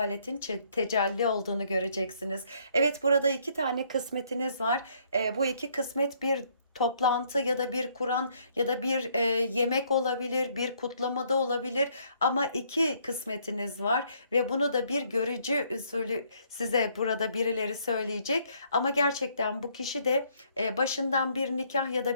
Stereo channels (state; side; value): inverted; both; correlation -0.67